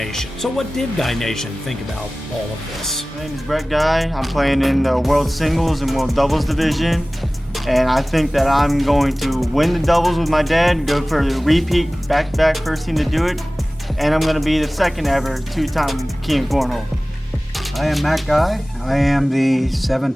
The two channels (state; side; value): normal; both; correlation 0.98